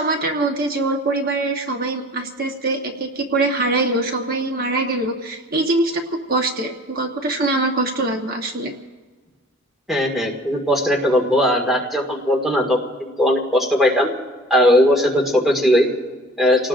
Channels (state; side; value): normal; both; correlation 0.45